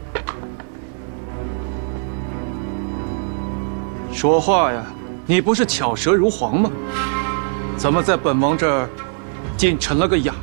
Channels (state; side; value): silent; left; 59 dB below the other